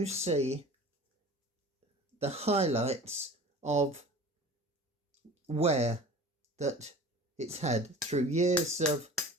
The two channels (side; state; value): both; normal; correlation 0.40